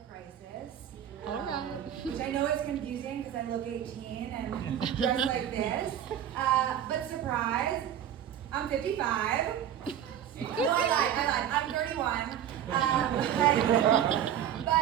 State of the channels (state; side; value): quieter; left; 10.2 dB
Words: crisis. All right. Which I know is confusing because I look 18 and dress like this. But surprise, I'm 55. No, I lied. I'm 31. But